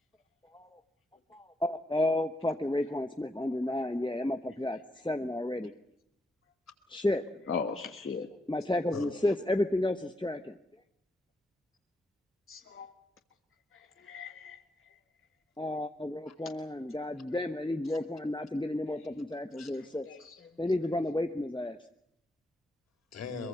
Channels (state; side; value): normal; both; correlation 0.80